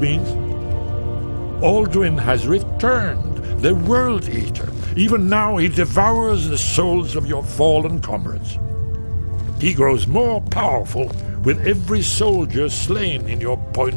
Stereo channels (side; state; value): both; inverted; correlation -1.00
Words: Alduin has returned, the World Eater. Even now he devours the souls of your fallen comrades. He grows more powerful with every soldier slain in your